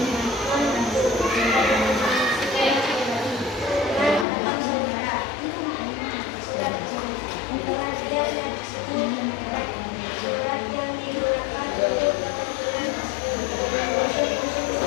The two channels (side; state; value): right; drops out; at 4.2 s